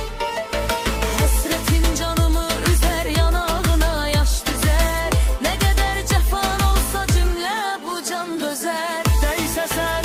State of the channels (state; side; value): identical; both; correlation 1.00